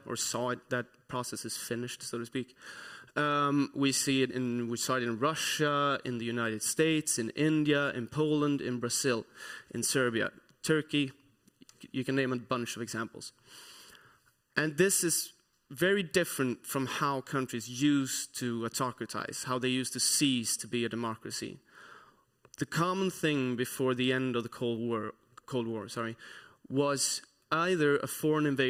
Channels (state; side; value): identical; both; correlation 1.00